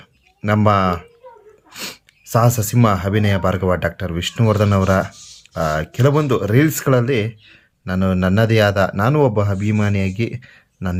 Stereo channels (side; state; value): both; identical; correlation 1.00